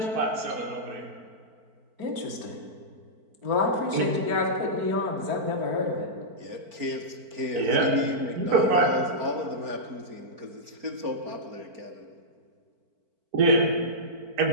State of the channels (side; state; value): left; late; 4.5 ms